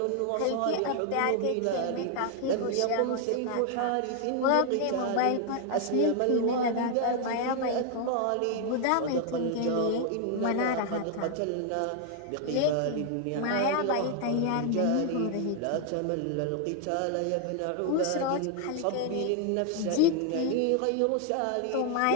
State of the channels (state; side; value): different; both; correlation 0.00